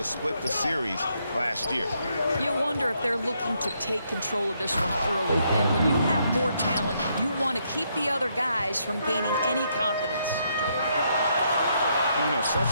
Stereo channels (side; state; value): both; inverted; correlation -0.75